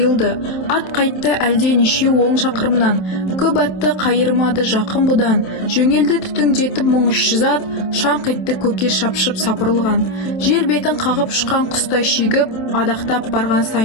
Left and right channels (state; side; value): late; right; 27 ms